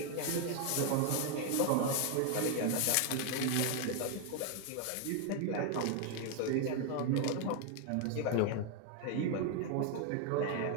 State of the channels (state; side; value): different; both; correlation 0.01